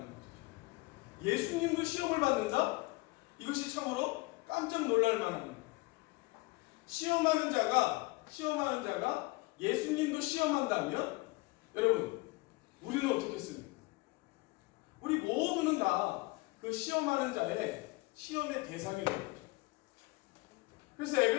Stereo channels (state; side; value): quieter; right; 23.4 dB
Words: 것이죠. 예수님도 시험을 받는다? 이것이 참으로 깜짝 놀랄 만한 시험하는 자가 예수님도 시험한다면 여러분 우리는 어떻겠습니까? 우리 모두는 다 그 시험하는 자의 시험의 대상이 되는 거죠. 그래서